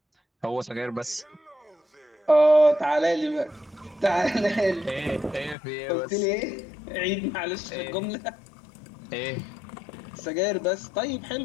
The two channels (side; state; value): right; drops out; at 5.6 s